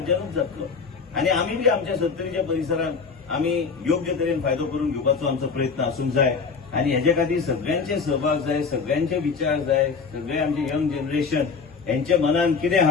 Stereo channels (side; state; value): right; quieter; 5.3 dB